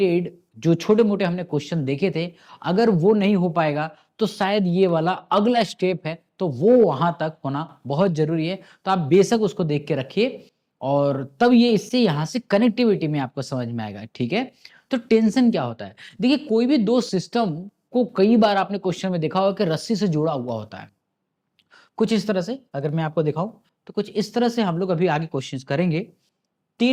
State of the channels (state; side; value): identical; both; correlation 1.00